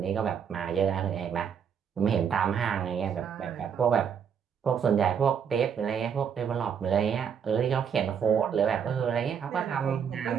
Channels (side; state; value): left; quieter; 7.5 dB